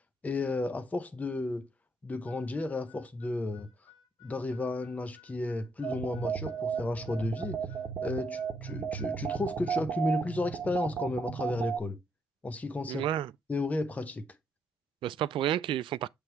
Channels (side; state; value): both; normal; correlation 0.74